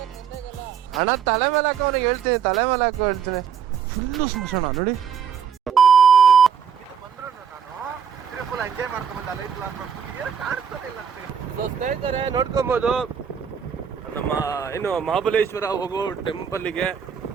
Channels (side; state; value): left; quieter; 7.4 dB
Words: ಅಣ್ಣ. ತಲೆ ಮೇಲೆ ಹಾಕೋ ಅವನಿಗೆ ಹೇಳ್ತೀನಿ, ತಲೆ ಮೇಲೆ ಹಾಕೋ ಹೇಳ್ತೀನಿ. ಫುಲ್ಲು ಸ್ಮಶಾನ ನೋಡಿ. ಸ್ನೇಹಿತರೆ ನೋಡ್ಕೊಬೋದು ನಮ್ಮ ಏನು ಮಹಾಬಲೇಶ್ವರ ಹೋಗೋ ಟೆಂಪಲ್ಗೆ.